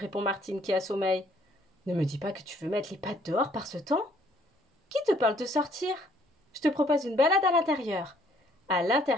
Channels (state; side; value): normal; both; correlation 0.63